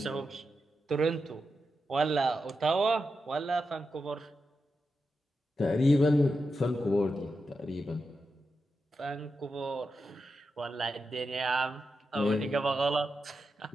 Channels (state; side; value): normal; both; correlation 0.88